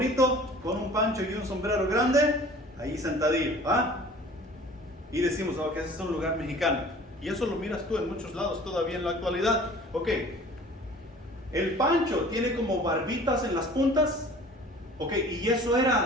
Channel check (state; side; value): normal; both; correlation 0.47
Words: con un pancho y un sombrero grande, ahí sentadillo, ¿ah? Y decimos, que ese es un lugar mexicano. Y eso lo miras tú en muchos lados todavía en la actualidad. Ok, el pancho tiene como barbitas en las puntas. Ok, y eso